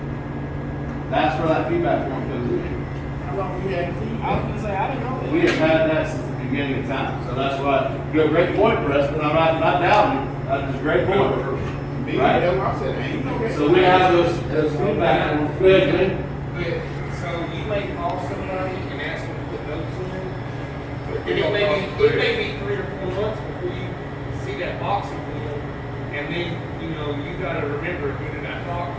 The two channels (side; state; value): both; identical; correlation 1.00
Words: That's where that feedback form comes in. How long you had feet? I was gonna say, I didn't know that. We have had that since the beginning of time, so that's why, you have a great point, Preston, I'm not doubting it, that's just a great point. Me, Right. that's what I said, ain't no. So we have those feedback forms, go ahead, Glenn. But, so you may call somebody and ask them to put notes in there, and it may be 3 or 4 months before you see that box again, and then, you know, you gotta remember, who did I talk